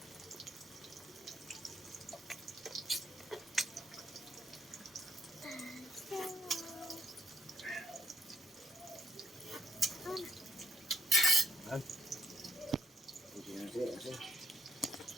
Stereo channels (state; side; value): normal; both; correlation 0.73